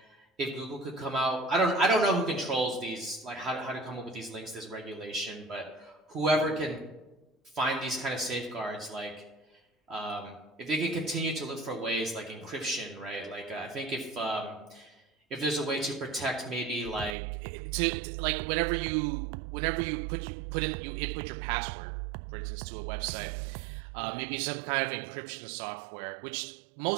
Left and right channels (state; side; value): drops out; left; at 17.2 s